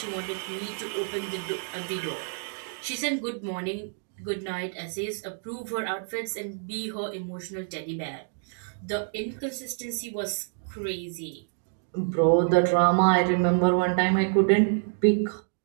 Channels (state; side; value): silent; left; digital silence